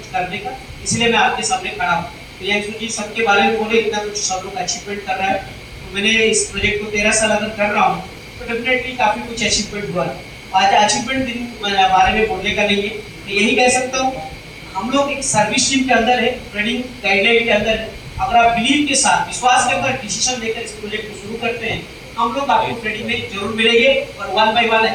करने का, इसलिए मैं आपके सामने खड़ा हूँ। प्रियांशु जी सबके बारे में बोले, इतना कुछ सब लोग अचीवमेंट कर रहा है, तो मैंने इस प्रोजेक्ट को 13 साल अगर कर रहा हूँ तो डेफिनेटली काफी कुछ अचीवमेंट हुआ है। आज अचीवमेंट बारे में बोलने का नहीं है, मैं यही कह सकता हूँ हम लोग एक सर्विस टीम के अंदर है, ट्रेनिंग गाइडलाइन के अंदर है। अगर आप बिलीव के साथ, विश्वास के साथ डिसीजन लेकर इस प्रोजेक्ट को शुरू करते हैं, हम लोग आपको ट्रेनिंग में जरूर मिलेंगे और 1 by 1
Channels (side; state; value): both; identical; correlation 1.00